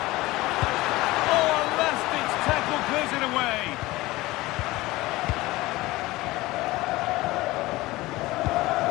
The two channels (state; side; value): quieter; right; 19.4 dB